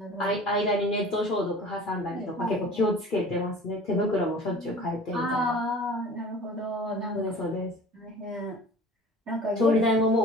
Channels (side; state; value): both; normal; correlation 0.43